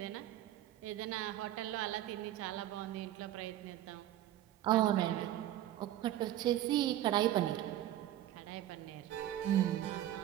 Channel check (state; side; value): quieter; left; 13.0 dB